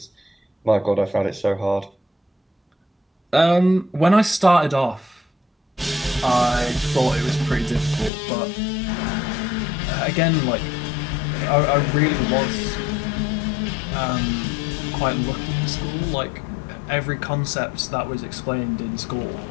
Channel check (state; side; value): drops out; right; at 8.1 s